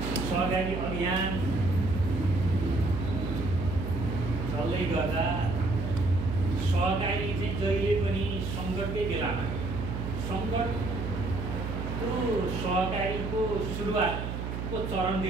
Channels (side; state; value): right; noise; hum, 4 dB below the sound